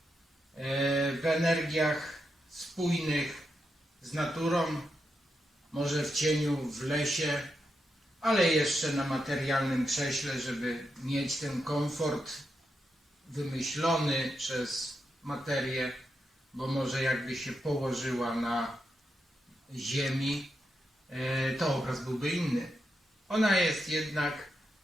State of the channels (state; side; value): normal; both; correlation 0.85